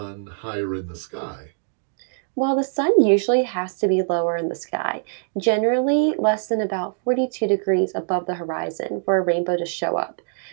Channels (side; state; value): left; silent; 63 dB below the other